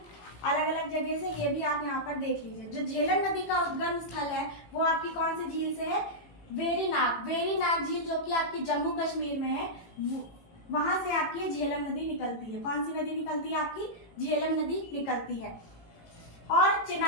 अलग अलग जगह से। ये भी आप यहाँ पर देख लीजिए। जो झेलम नदी का उद्गम स्थल है वो आपकी कौन सी झील से है? वेरीनाग झील, जो कि आपकी जम्मू कश्मीर में है। वहां से आपकी झेलम नदी निकलती है। कौन सी नदी निकलती है? आपकी झेलम नदी निकलती है। और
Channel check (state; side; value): late; right; 18 ms